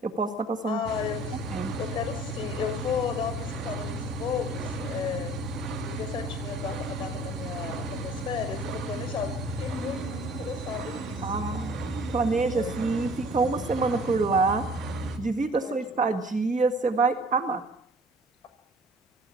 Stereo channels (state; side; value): normal; both; correlation 0.51